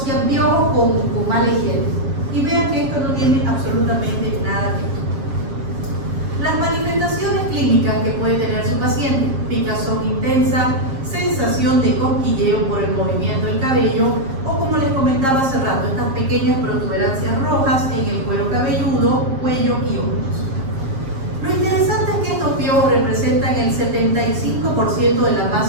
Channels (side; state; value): left; late; 7.4 ms